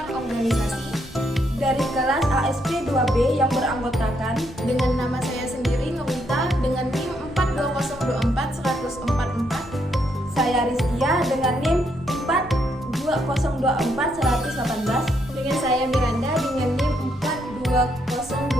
organisasi dari kelas ASP 2B yang beranggotakan dengan nama saya sendiri Nurita dengan NIM 42024-144. Saya Rizkia dengan NIM 42024-118. Dengan saya Miranda dengan NIM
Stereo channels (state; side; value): normal; both; correlation 0.75